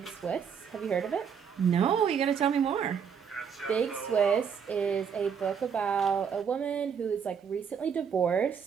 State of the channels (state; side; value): quieter; left; 7.1 dB